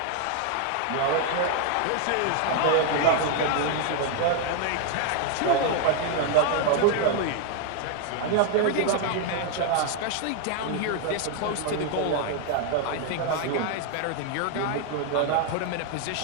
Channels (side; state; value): both; different; correlation 0.00